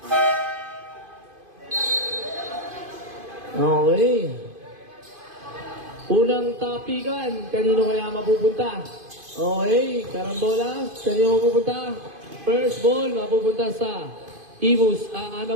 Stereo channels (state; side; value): late; left; 2.5 ms